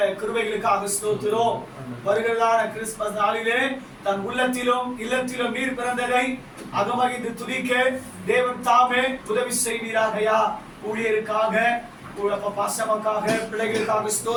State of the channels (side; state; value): both; identical; correlation 1.00